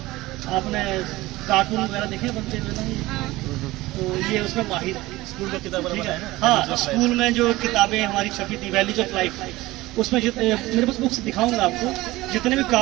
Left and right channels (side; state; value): left; quieter; 18.9 dB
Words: आपने कार्टून वगैरह देखे बनते हुए ना, तो ये उसमें माहिर है। स्कूल का किताब है, हाँ, स्कूल में जो किताबें हमारी छपी थी वैल्यूज ऑफ लाइफ, उसमें मेरे पास बुक्स दिखाऊंगा आपको, जितने भी